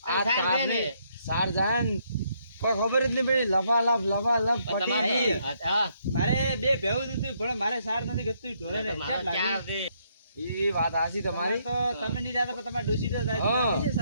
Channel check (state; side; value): inverted; both; correlation -0.72